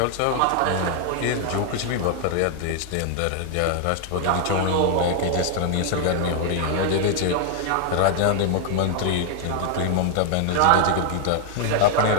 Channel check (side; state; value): both; different; correlation 0.00